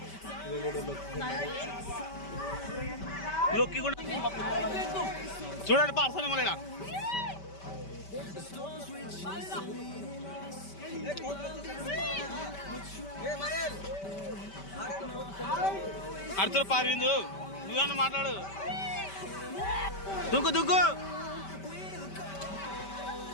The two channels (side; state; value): right; late; 5.2 ms